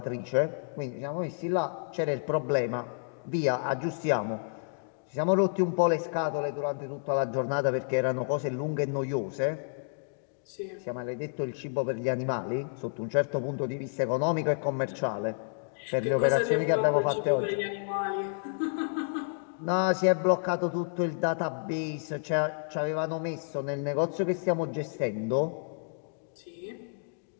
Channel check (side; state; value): right; silent; digital silence